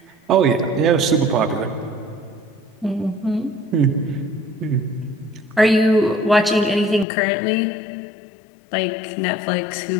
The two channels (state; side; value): drops out; right; at 7.1 s